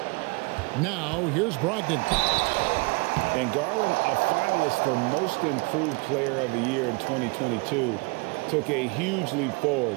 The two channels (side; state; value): left; quieter; 29.0 dB